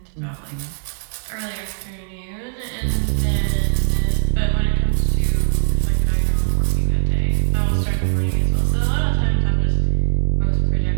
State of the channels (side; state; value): left; silent; digital silence